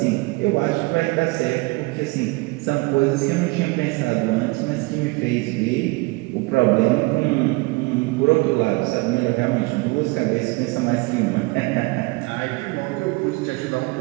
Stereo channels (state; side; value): quieter; left; 24.9 dB